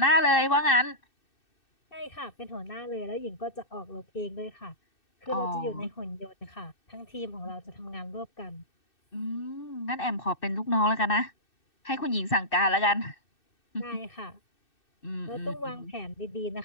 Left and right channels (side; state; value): right; late; 2.6 ms